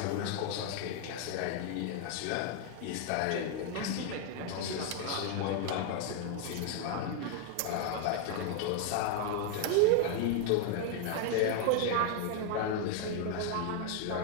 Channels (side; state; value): both; different; correlation 0.00